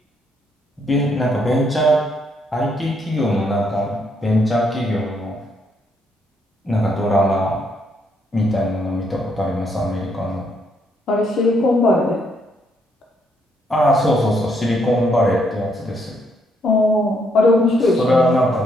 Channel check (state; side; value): normal; both; correlation 0.73